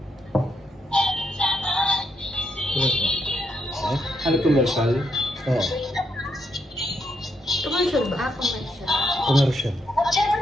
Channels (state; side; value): normal; both; correlation 0.78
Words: Ano commercial? Oo. Commercial ba? Commercial. Commercial. at